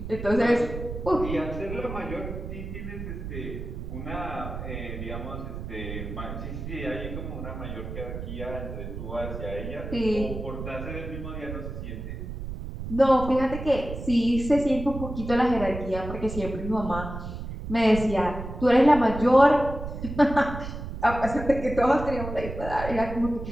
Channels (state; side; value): noise; right; rumble, 8 dB below the sound